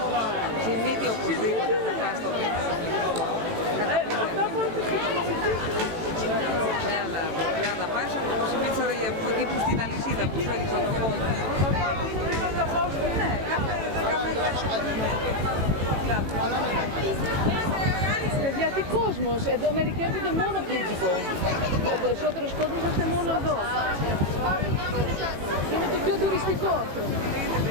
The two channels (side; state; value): left; late; 18 ms